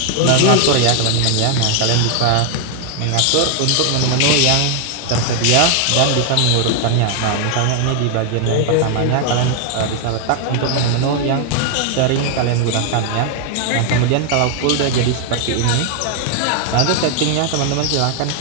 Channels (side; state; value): both; different; correlation 0.00